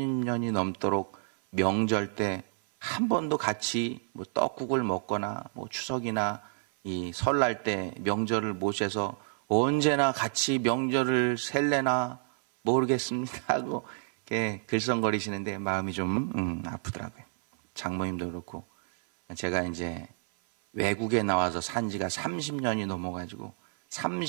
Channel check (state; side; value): silent; left; 57 dB below the other